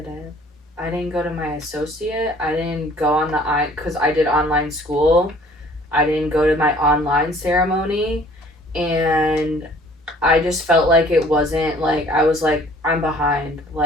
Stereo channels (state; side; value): normal; both; correlation 0.54